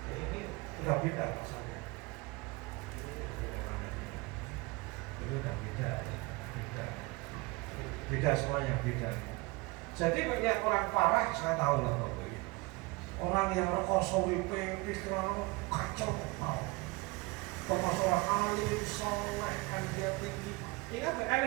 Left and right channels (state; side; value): quieter; left; 24.4 dB